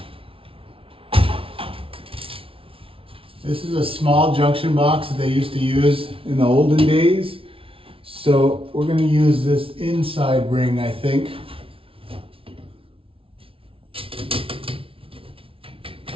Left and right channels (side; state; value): left; late; 0.26 ms